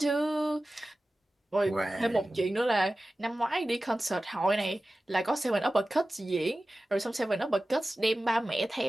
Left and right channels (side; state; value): both; normal; correlation 0.96